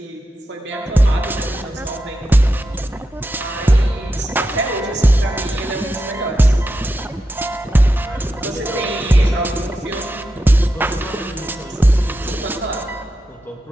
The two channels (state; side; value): normal; both; correlation 0.88